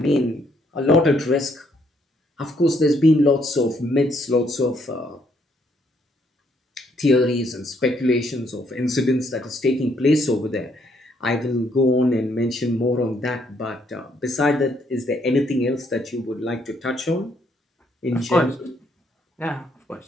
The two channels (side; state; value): both; normal; correlation 0.71